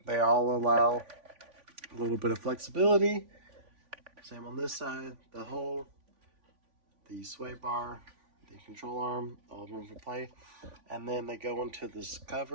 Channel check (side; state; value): left; late; 3.5 ms